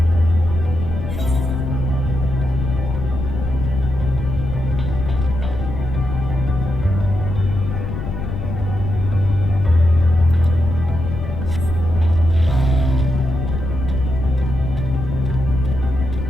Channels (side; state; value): left; noise; rumble, 6 dB below the sound